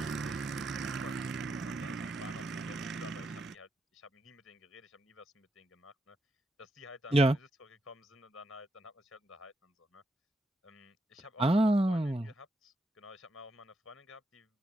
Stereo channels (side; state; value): both; normal; correlation 0.82